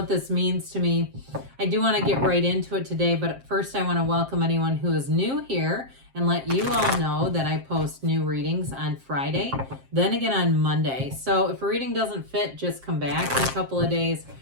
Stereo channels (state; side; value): late; left; 7.5 ms